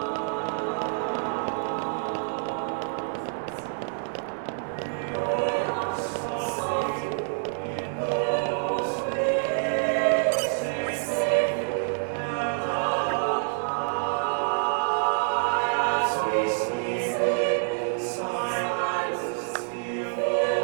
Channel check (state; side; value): silent; left; digital silence